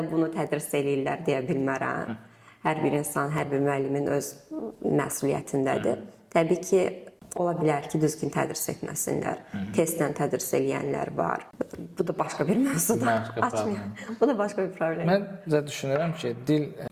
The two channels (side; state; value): both; identical; correlation 1.00